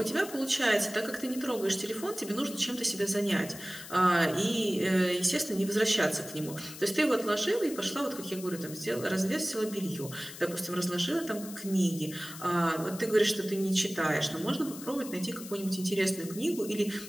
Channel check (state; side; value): noise; left; hiss, 13 dB below the sound